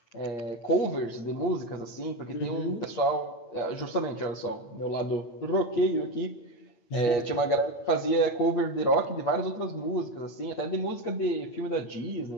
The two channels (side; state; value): right; late; 8.8 ms